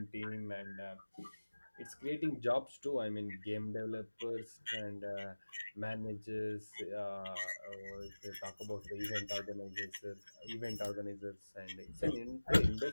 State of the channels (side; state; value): both; inverted; correlation -1.00